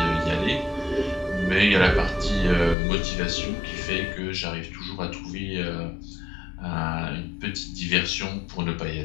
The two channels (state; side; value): drops out; right; at 2.8 s